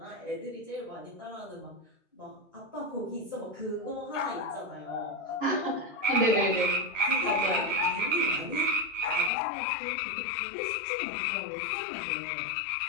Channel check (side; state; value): right; drops out; at 9.3 s